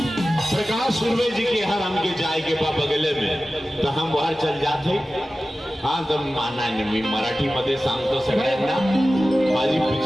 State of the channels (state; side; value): normal; both; correlation 0.95